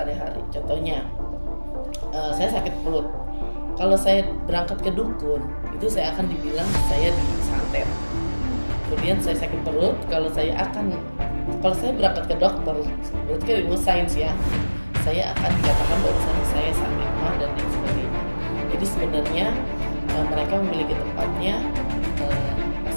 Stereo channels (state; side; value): inverted; both; correlation -1.00